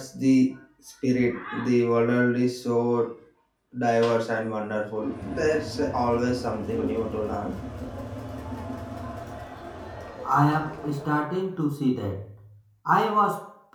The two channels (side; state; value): both; identical; correlation 1.00